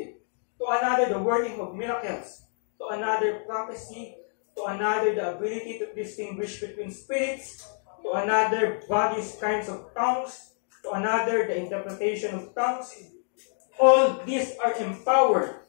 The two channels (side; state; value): right; silent; digital silence